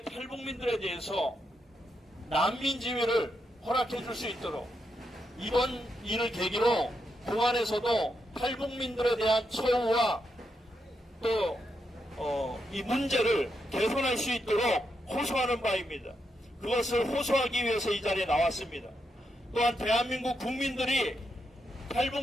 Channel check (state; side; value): normal; both; correlation 0.83